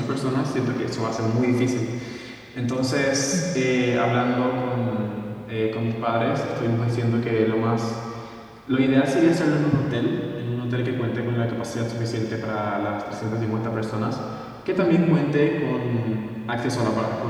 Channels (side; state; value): both; identical; correlation 1.00